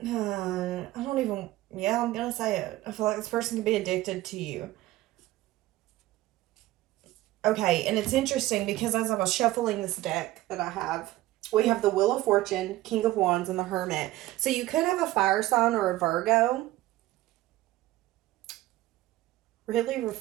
I don't even, yeah, I'm going to say it. I feel like this person could be addicted to you. Okay, and it's interesting because as I was shuffling this deck that I have, we have the Wheel of Fortune, King of Wands, and the Hermit. So you could have a fire sign or a Virgo really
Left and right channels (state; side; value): quieter; left; 16.4 dB